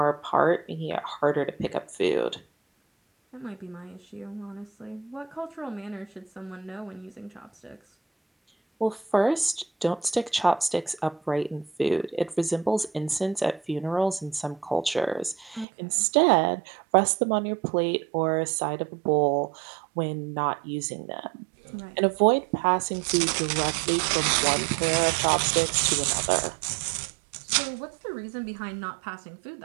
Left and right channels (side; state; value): left; drops out; at 15.7 s